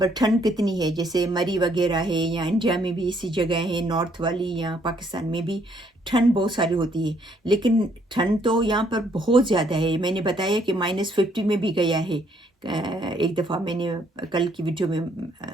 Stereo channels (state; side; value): normal; both; correlation 0.68